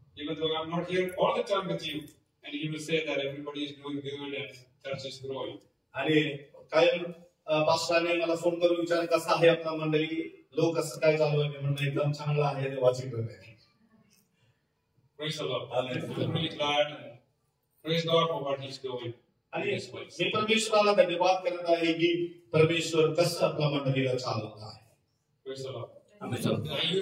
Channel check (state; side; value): identical; both; correlation 1.00